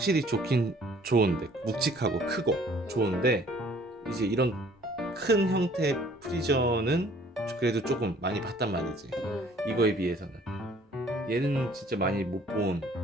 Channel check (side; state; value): both; normal; correlation 0.56